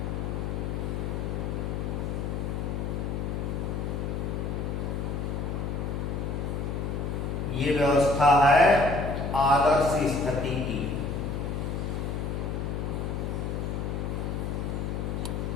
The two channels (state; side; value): noise; left; hum, 2 dB below the sound